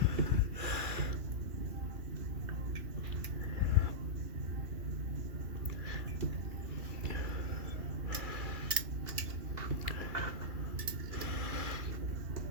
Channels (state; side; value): late; left; 2.8 ms